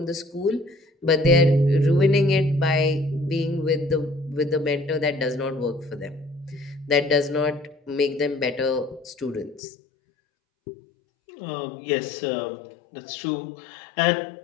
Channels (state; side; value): drops out; right; at 9.6 s